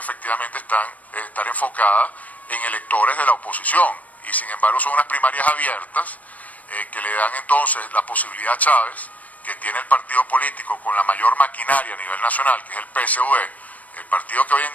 estar enfocadas en electores de la oposición, y sin embargo son unas primarias abiertas que le dan entonces la posibilidad a Chávez, que tiene el partido político con la mayor maquinaria a nivel nacional, que es el PSUV, el partido que hoy en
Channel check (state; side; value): late; right; 0.072 ms